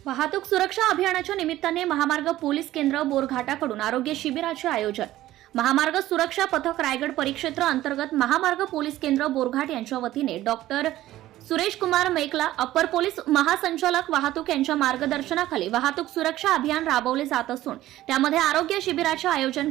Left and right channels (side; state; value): left; quieter; 14.9 dB